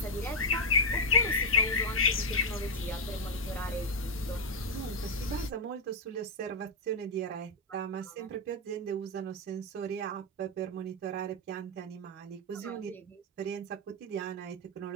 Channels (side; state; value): both; normal; correlation -0.03